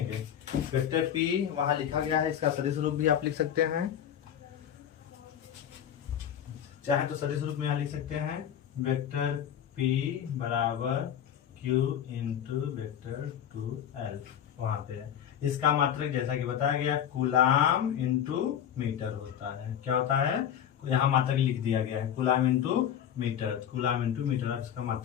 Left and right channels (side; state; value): right; quieter; 9.6 dB